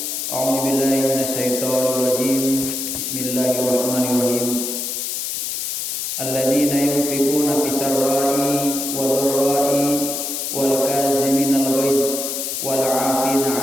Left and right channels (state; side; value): noise; left; hiss, 3 dB below the sound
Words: a'udzu billahi minasyaitonir rajim. Bismillahirrahmanirrahim. Alladzina yunfikuna fis sarra'i wa dharra'i wal kaziminal ghaiz wal 'afina